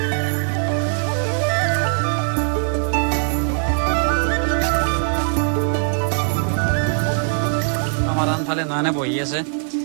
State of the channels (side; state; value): left; silent; digital silence